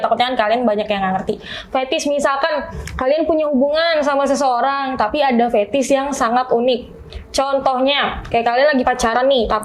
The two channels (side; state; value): both; identical; correlation 1.00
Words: takutnya kan kalian banyak yang nggak ngerti. Fetish misalkan kalian punya hubungan sama seseorang, tapi ada fetish yang sangat unik. Contohnya, kayak kalian lagi pacaran nih,